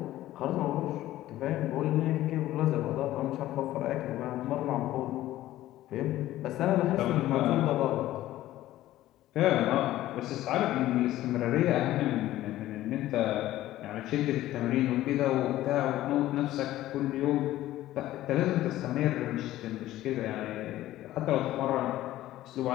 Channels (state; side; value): quieter; right; 14.8 dB